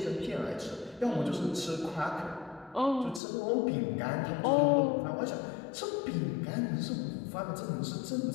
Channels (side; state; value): right; drops out; at 3.2 s